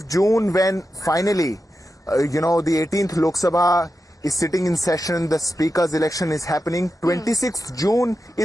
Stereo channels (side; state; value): both; normal; correlation 0.90